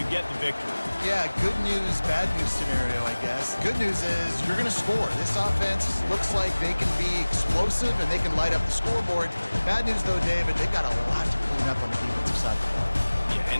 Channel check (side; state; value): both; inverted; correlation -1.00